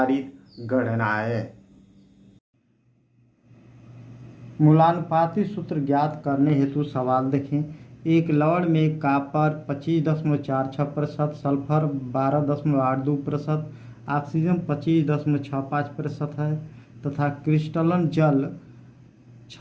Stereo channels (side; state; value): both; identical; correlation 1.00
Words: गणनाएं। मूलानुपाती सूत्र ज्ञात करने हेतु सवाल देखें। एक लवण में कॉपर 25.46%, सल्फर 12.82%, ऑक्सीजन 25.65% है तथा क्रिस्टलन जल